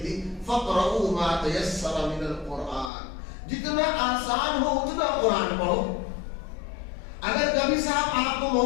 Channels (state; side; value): drops out; right; at 2.9 s